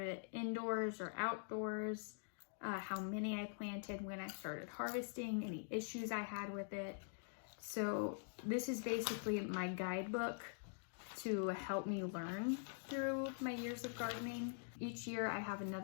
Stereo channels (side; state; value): right; silent; digital silence